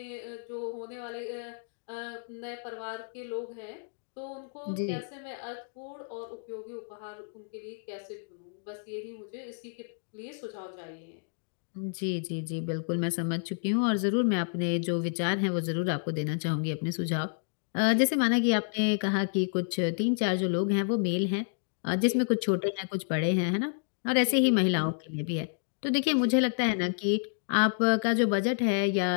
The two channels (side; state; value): right; silent; digital silence